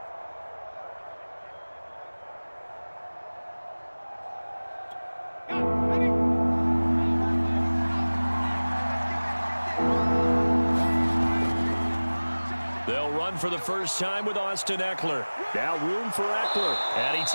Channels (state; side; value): inverted; both; correlation -1.00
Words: For the first time with Austin Eckler. Now room for Eckler. And he